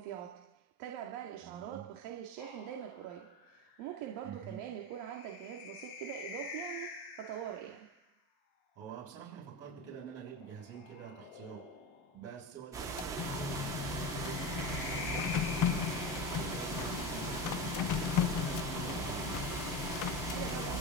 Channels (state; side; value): normal; both; correlation 0.23